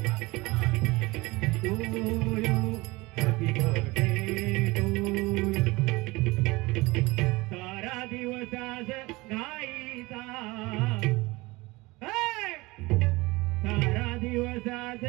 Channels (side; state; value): left; quieter; 22.3 dB